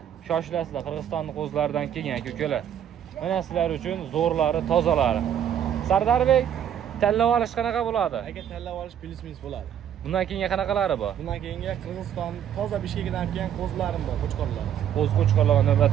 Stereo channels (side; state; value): left; quieter; 9.5 dB